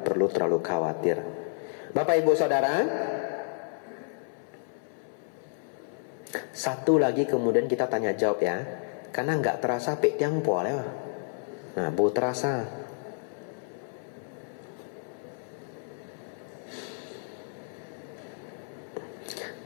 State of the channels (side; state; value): right; silent; 58 dB below the other